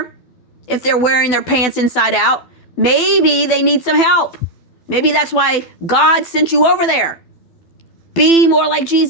if they're wearing their pants inside out. Maybe they need some help. Maybe that's why God sent you over there. Be more like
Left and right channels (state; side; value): late; right; 12 ms